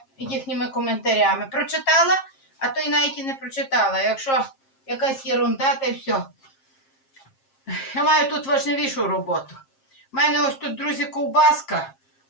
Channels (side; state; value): right; late; 7.5 ms